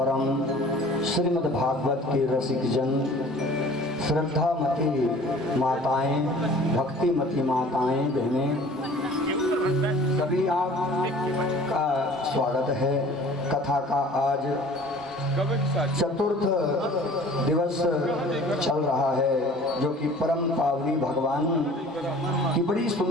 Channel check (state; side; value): normal; both; correlation 0.47